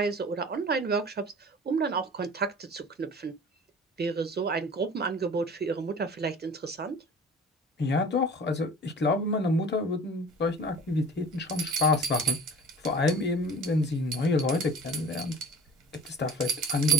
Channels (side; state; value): both; normal; correlation 0.42